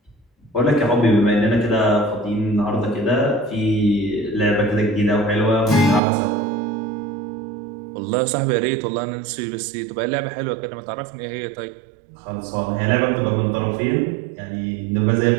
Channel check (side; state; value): left; drops out; at 6.0 s